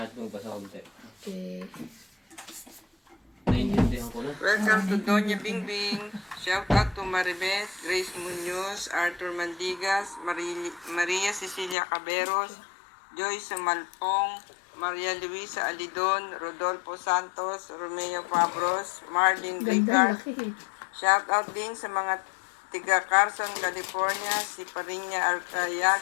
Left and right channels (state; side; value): drops out; right; at 11.8 s